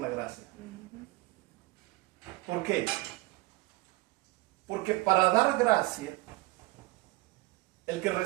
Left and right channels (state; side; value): quieter; left; 20.1 dB